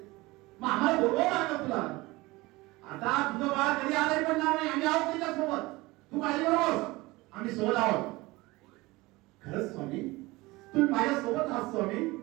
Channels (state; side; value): quieter; left; 21.5 dB